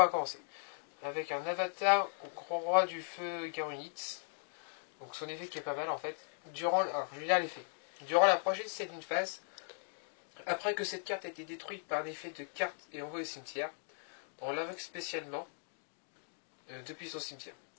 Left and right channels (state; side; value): silent; right; 52 dB below the other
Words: commencer. Avec un avatar au grand roi du feu Garunitz. Donc son effet qui est pas mal en fait. Alors je vais lire l'effet. Durant la prochaine setting phase, après que cette carte a été détruite par un effet de carte et envoyée au cimetière, on l'invoque spécialement depuis son cimetière.